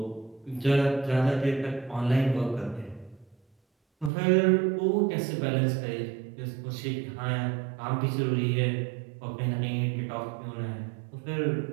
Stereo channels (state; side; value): drops out; left; at 4.1 s